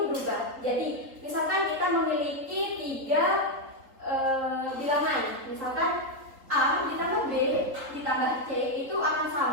berubah. Jadi, misalkan kita memiliki 3 bilangan, misalkan A ditambah B ditambah C itu akan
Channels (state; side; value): late; left; 3.8 ms